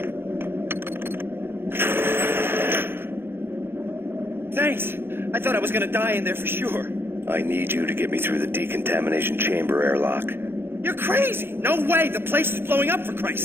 Thanks! I thought I was gonna die in there for sure. I need you to get me through the decontamination chamber airlock. You're crazy! No way! The place is blowing up, for Christ's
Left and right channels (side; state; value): left; late; 0.11 ms